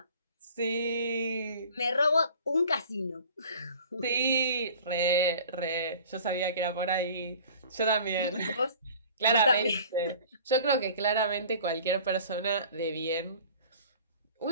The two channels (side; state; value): both; inverted; correlation -0.46